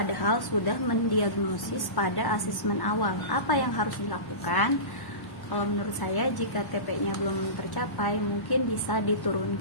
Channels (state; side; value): late; right; 1.1 ms